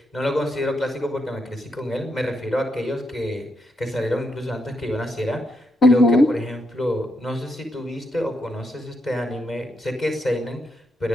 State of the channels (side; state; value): both; normal; correlation 0.81